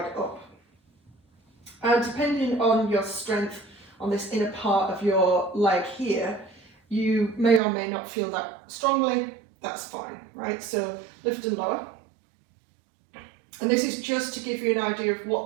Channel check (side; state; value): left; drops out; at 7.6 s